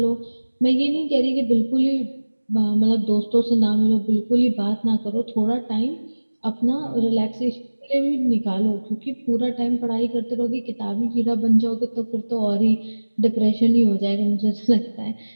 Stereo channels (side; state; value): both; inverted; correlation -1.00